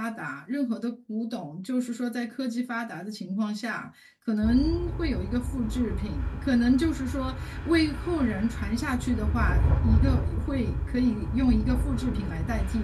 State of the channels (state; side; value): identical; both; correlation 1.00